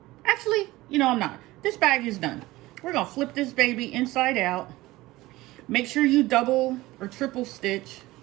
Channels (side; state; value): left; quieter; 18.7 dB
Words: actually, you know, I'm not. This bag is done. We're gonna flip this baby inside out. Make sure you double or triple stitch.